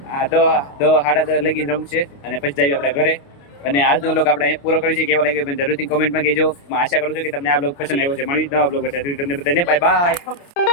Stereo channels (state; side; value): late; right; 29 ms